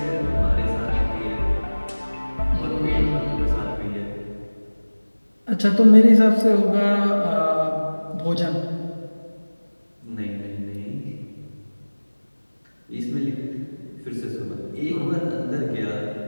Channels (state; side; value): inverted; both; correlation -1.00